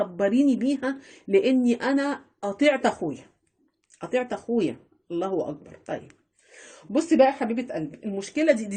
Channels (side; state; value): both; identical; correlation 1.00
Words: بيها، لاني انا قطعت اخويا، قطعت اخويا. الله اكبر. طيب بصي بقى يا حبيبه قلبي، المشكله